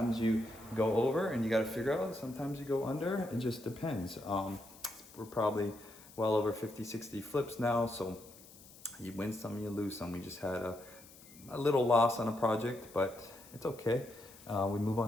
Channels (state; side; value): noise; left; hiss, 21 dB below the sound